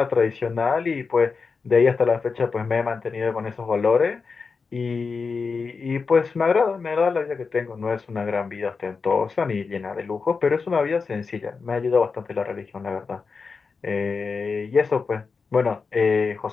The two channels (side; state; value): right; quieter; 4.9 dB